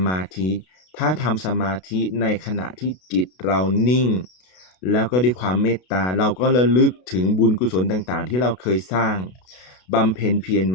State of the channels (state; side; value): late; right; 32 ms